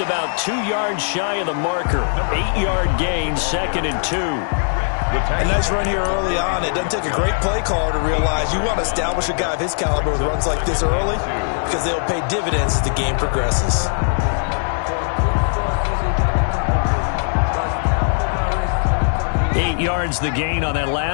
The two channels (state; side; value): silent; right; digital silence